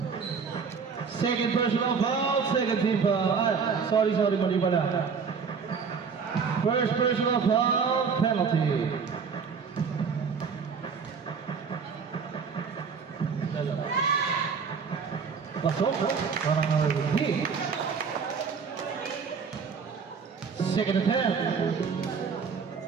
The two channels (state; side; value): quieter; left; 5.8 dB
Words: Second personal foul, second team foul. Ah, sorry, mali pala. First personal foul, penalty. Pasok, parang hindi. Second attempt.